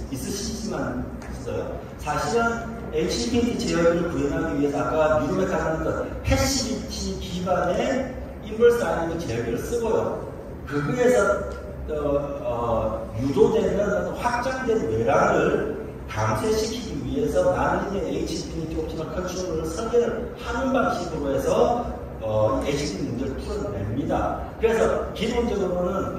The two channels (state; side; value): identical; both; correlation 1.00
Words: 있으시지만 있어요. 사실은 HPT 제어기를 구현하기 위해서 아까 뉴로메카는 것 패시비티 기반의 인버스 아니면 제어기를 쓰고요. 그거에서 유도되는 확장된 외랑을 감쇄시키기 위해서 나는 HPT 옵티멀 컨트롤을 설계를 하는 방식으로 해서 HPT 문제를 풀어냅니다. 그래서